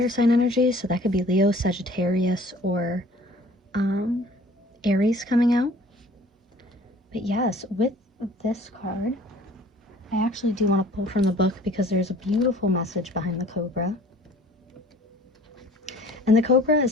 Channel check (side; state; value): both; normal; correlation 0.51